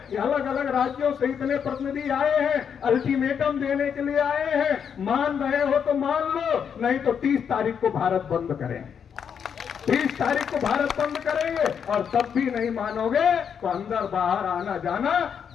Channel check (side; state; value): right; quieter; 7.4 dB